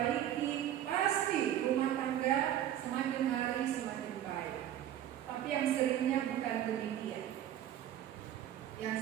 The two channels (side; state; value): left; quieter; 11.4 dB